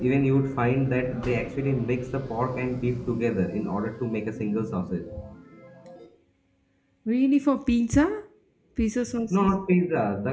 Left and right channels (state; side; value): identical; both; correlation 1.00